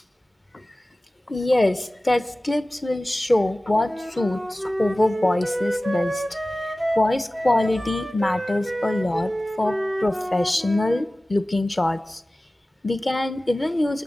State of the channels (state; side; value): normal; both; correlation 0.97